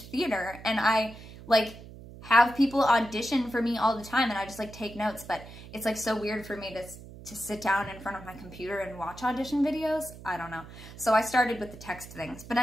and I like have people audition for me all the time, and I just like take notes, but it's like so weird for me to sit down in front of my computer and watch audition videos. I don't know. So I started with the text things. But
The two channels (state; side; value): noise; right; hum, 16 dB below the sound